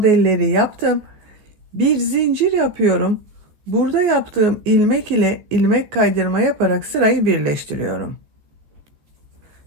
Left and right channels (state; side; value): late; left; 14 ms